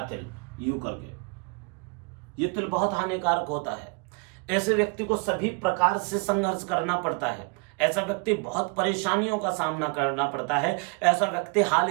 तिल यूं करके, ये तिल बहुत हानिकारक होता है। ऐसे व्यक्ति को सभी प्रकार से संघर्ष करना पड़ता है। ऐसा व्यक्ति बहुत परेशानियों का सामना करना पड़ता है। ऐसा व्यक्ति हाल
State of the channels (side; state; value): left; quieter; 32.8 dB